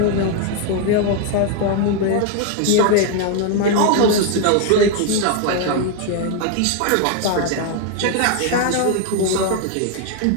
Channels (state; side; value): different; both; correlation 0.00